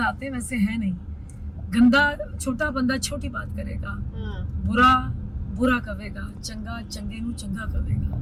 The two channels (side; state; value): both; identical; correlation 1.00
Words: आते हैं वैसे है नहीं। गंदा छोटा बंदा छोटी बात करेगा, बुरा बुरा कवेगा, चंगा चंगे नू चंगा